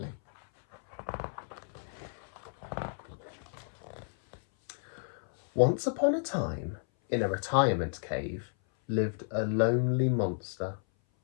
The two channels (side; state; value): right; silent; 56 dB below the other